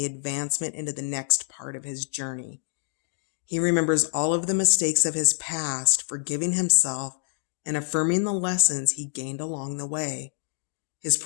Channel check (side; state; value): right; silent; 60 dB below the other